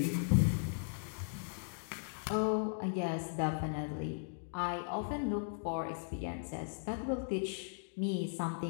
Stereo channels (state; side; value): silent; right; digital silence